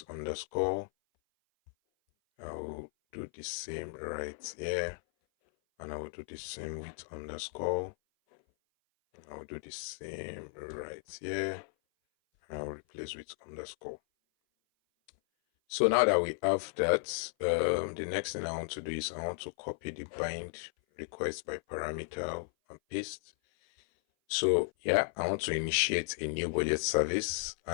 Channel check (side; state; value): right; silent; 55 dB below the other